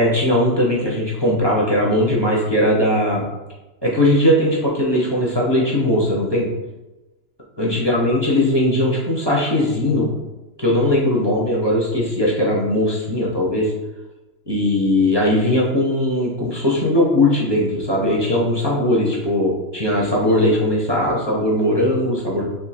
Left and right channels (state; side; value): late; left; 2.9 ms